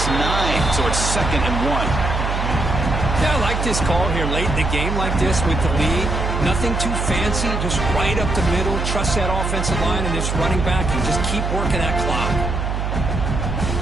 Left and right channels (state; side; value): noise; right; hum, 1 dB below the sound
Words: 9, so it's 2nd and 1. Yeah, I like this call here late in the game like this with the lead. Nothing too fancy, just right up the middle. Trust that offensive line and this running back and just keep working that clock.